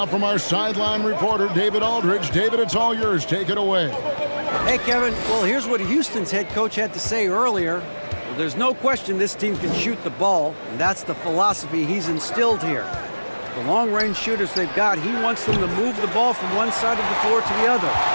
from our sideline reporter, David Aldridge. David, it's all yours. Take it away. Hey, Kevin. Well, here's what Houston's head coach had to say earlier. Well, there's no question this team can shoot the ball, and that's the philosophy he's instilled here. The long-range shooters they've got, he wants them to move the ball from one side of the floor to the other,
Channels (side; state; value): both; inverted; correlation -1.00